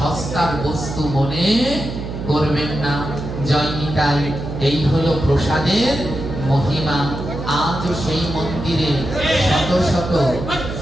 বস্তু মনে করবেন না। জয় নিতাই। এই হলো প্রসাদের মহিমা। আজও সেই মন্দিরে শত শত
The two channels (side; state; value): right; noise; hum, 7 dB below the sound